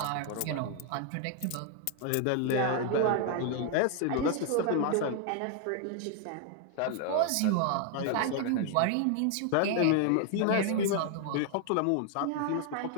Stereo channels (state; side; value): different; both; correlation 0.00